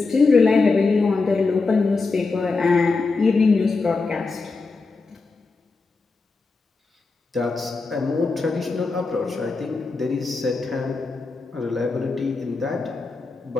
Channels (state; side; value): quieter; right; 4.0 dB